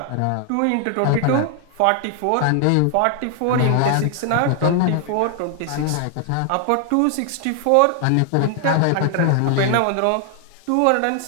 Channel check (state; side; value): different; both; correlation 0.00